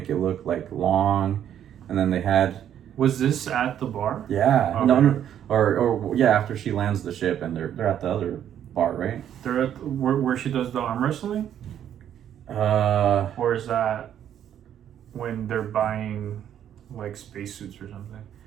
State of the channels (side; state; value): left; quieter; 10.0 dB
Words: it look like long, and then they had. Was this at the bar? Yeah. Okay. No, or yeah, after she lands the ship and they're at the other bar, right? They're at where she does the arm wrestling. Or is that when they're buying like spacesuits or something?